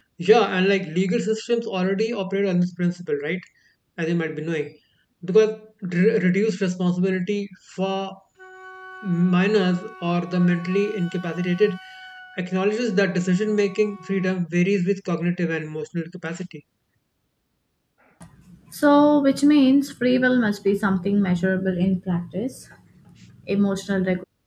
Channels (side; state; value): both; identical; correlation 1.00